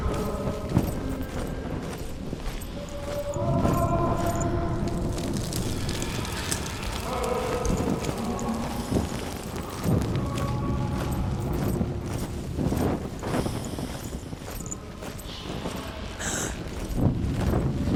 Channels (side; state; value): both; identical; correlation 1.00